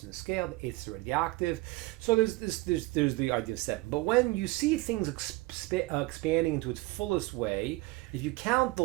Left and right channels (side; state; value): left; quieter; 21.3 dB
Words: in the scale, the 8th is already the octave. So there's the idea of 7. But when you see things expanding into its fullest way, if you count the